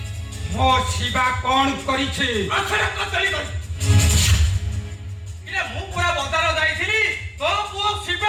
ମୋ ଶିବା କଣ କରିଛି ମୁଁ ପୁରା ବଜାର ଯାଇଥିଲି ତୋ ପୁଅ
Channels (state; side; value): identical; both; correlation 1.00